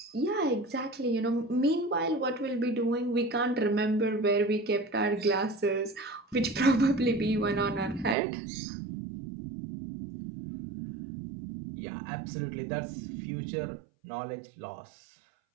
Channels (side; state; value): left; drops out; at 8.2 s